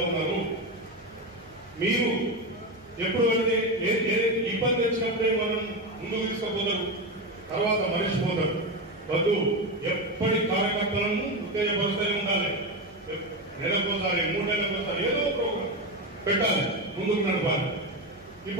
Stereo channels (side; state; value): right; noise; hum, 28 dB below the sound